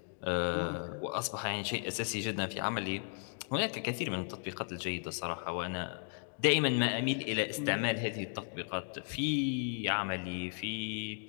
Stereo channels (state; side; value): silent; right; digital silence